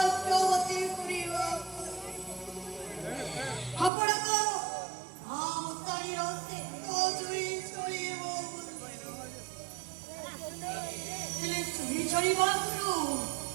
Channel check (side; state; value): left; drops out; at 3.9 s